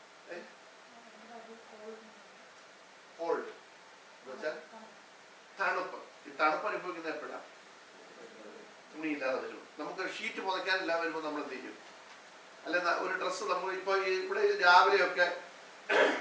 കോൾഡ് എന്നുവെച്ചാൽ തണുപ്പ്. ഈ തണുപ്പ് അനുഭവിക്കുന്ന എപ്പോഴാണ്? തുണിയില്ലാതെ വരും. നമുക്ക് ഷീറ്റ് പുതയ്ക്കാനില്ലാതെ വരുമ്പോൾ നമ്മൾ എന്ത് ചെയ്യും? അല്ലെ, ഒരു ഡ്രസ്സ് നമ്മൾ ഇപ്പൊ ഇവിടെ രാവിലെയൊക്കെ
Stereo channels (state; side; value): identical; both; correlation 1.00